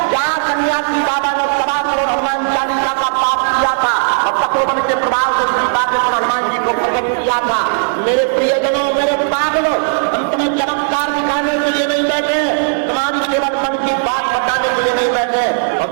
जहाँ सन्यासी बाबा ने 7 करोड़ हनुमान चालीसा का पाप किया था और तपोवन के प्रभाव से श्री बागेश्वर हनुमान जी को प्रकट किया था। मेरे प्रियजन, मेरे पागलों, हम तुम्हें चमत्कार दिखाने से और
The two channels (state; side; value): silent; left; 70 dB below the other